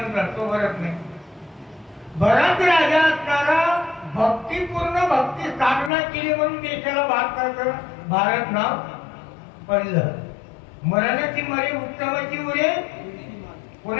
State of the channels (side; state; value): right; drops out; at 5.9 s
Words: तो भरत नाही. भरत राजा असणारा भक्तीपूर्ण भक्ती स्थापना केली म्हणून देशाला भारत नाव पडलं. मरणाची मरे उत्तमाची उरे